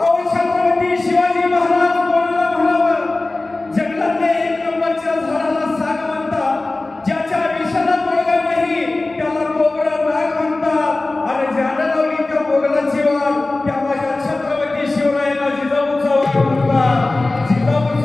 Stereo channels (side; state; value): right; quieter; 3.1 dB